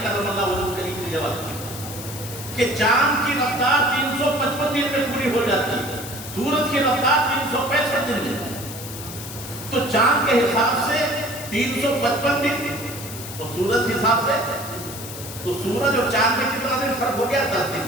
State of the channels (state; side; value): noise; left; hiss, 11 dB below the sound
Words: کرم اللہ وجہہ کریم نے جواب دیا کہ چاند کی رفتار 355 دن میں پوری ہو جاتی ہے، سورج کی رفتار 365 دن میں. تو چاند کے حساب سے 355 دن، تو سورج کے حساب سے تو سورج اور چاند میں کتنا دن فرق ہو گیا؟ 10